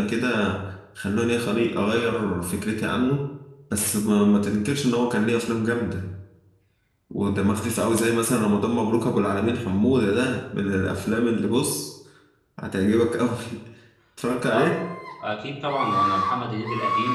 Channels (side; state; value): both; identical; correlation 1.00